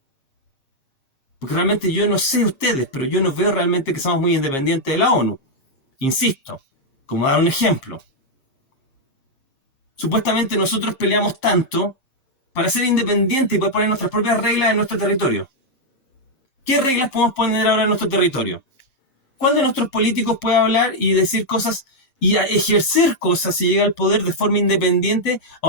Porque realmente yo no sé ustedes, pero yo no veo realmente que somos muy independientes de la ONU. Insisto, como dar un ejemplo. Supuestamente nosotros peleamos tanto para ser independientes y poder poner nuestras propias reglas en nuestro territorio. ¿Qué reglas podemos poner ahora en nuestro territorio? ¿Cuál de nuestros políticos puede hablar y decir cosas y ejercer cosas si llega al poder de forma independiente a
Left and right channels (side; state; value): right; late; 7.5 ms